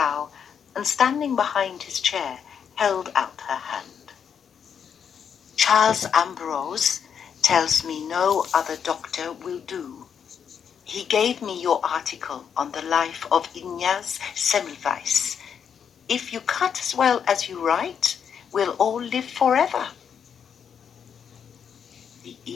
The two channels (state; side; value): quieter; right; 7.5 dB